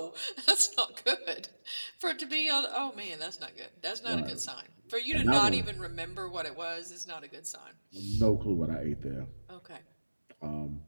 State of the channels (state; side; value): inverted; both; correlation -1.00